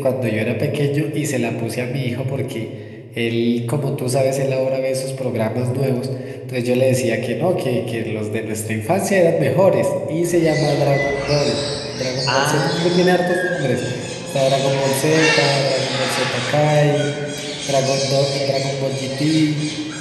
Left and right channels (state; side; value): identical; both; correlation 1.00